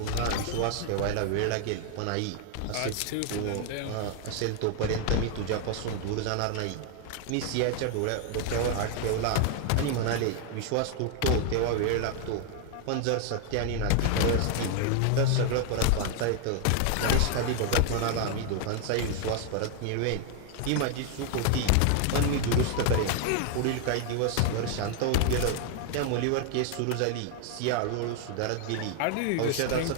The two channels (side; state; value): both; different; correlation 0.00